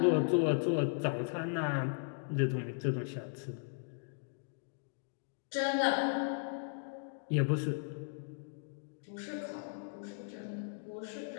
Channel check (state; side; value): silent; right; digital silence